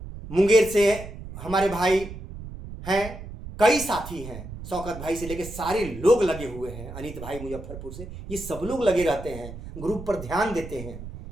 मुंगेर से हमारे भाई हैं, कई साथी हैं, शौकत भाई से लेके सारे लोग लगे हुए हैं, अनित भाई मुजफ्फरपुर से, ये सब लोग लगे रहते हैं, ग्रुप पर ध्यान देते हैं,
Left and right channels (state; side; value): noise; right; rumble, 11 dB below the sound